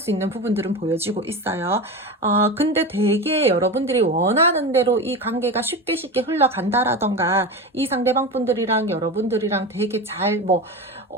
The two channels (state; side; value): normal; both; correlation 0.24